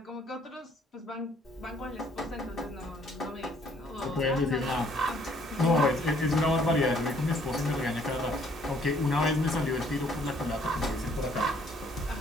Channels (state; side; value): normal; both; correlation 0.63